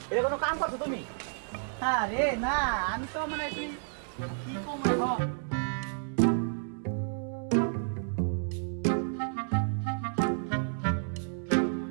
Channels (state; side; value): silent; left; digital silence